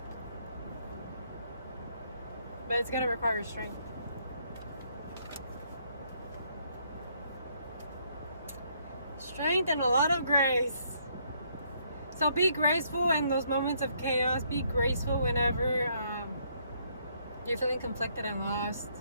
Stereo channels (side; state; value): both; inverted; correlation -0.69